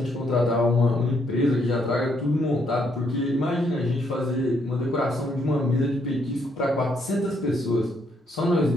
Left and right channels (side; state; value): both; normal; correlation 0.72